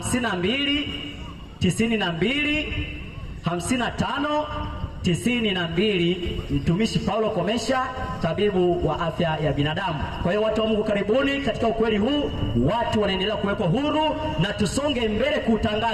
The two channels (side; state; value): both; identical; correlation 1.00